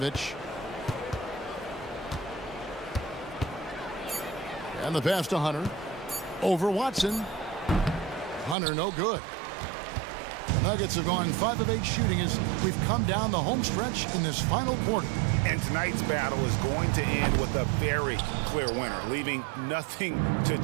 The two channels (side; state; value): left; drops out; at 8.6 s